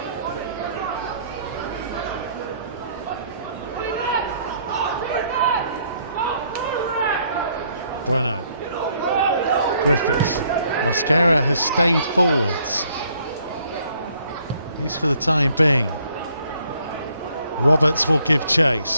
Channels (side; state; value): both; inverted; correlation -0.66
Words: Bueno. Griffiths. Mosquera has stayed forwards, at least for the time being. Roberts will give